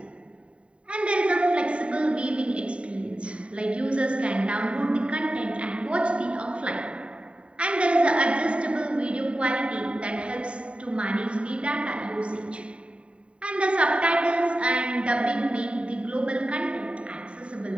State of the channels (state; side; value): late; left; 0.060 ms